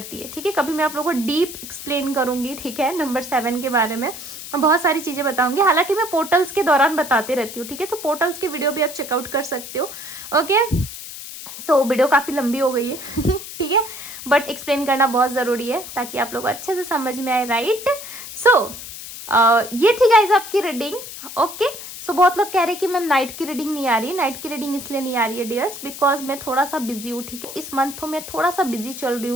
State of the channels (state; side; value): noise; left; hiss, 11 dB below the sound